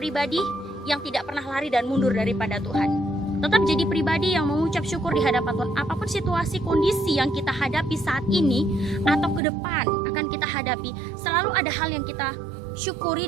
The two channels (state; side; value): drops out; left; at 9.4 s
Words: yang tidak pernah lari dan mundur daripada Tuhan. Tetap jadi pribadi yang mengucap syukur di hadapan Tuhan. Apapun situasi, kondisi yang kita hadapi saat ini atau ke depan akan kita hadapi, selalu ada hal yang kita syukuri